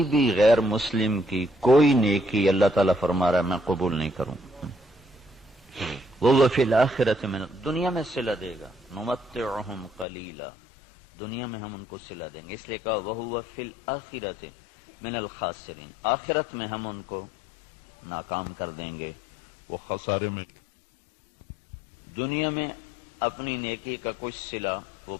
بھی غیر مسلم کی کوئی نیکی اللہ تعالیٰ فرما رہا ہے میں قبول نہیں کروں. وہ فی الآخرۃ من، دنیا میں صلہ دے گا. نمتعہم قلیلا، دنیا میں ہم ان کو صلہ دیں گے. اس لیے کہا وہو فی الآخرۃ من الخاسرین، آخرت میں ہم ان کو ناکام کر دیں گے، وہ خسارے میں. دنیا میں اپنی نیکی کا کچھ صلہ وہ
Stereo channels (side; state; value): right; drops out; at 10.1 s